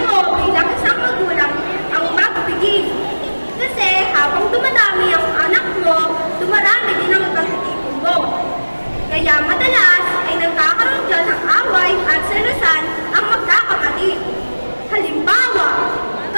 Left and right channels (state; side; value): inverted; both; correlation -1.00